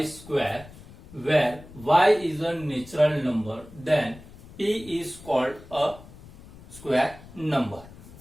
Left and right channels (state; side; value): noise; left; rumble, 19 dB below the sound